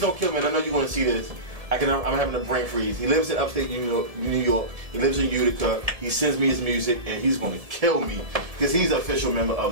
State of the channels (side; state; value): left; late; 1.7 ms